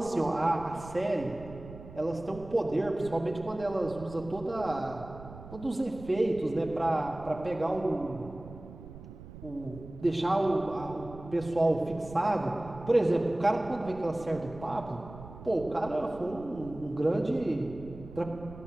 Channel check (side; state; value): right; noise; rumble, 15 dB below the sound